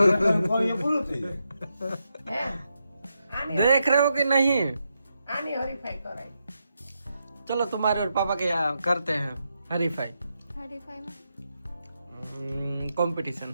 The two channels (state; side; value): inverted; both; correlation -0.84